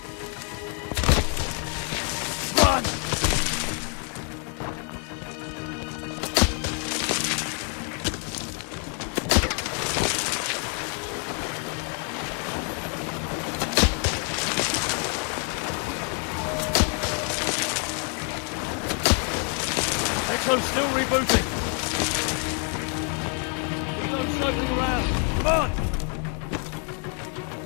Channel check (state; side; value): quieter; right; 39.4 dB